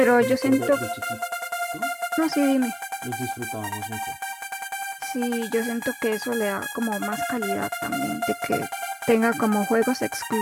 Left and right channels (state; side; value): identical; both; correlation 1.00